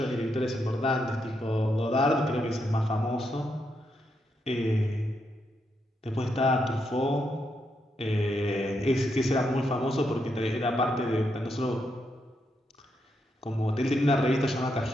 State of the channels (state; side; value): normal; both; correlation 0.81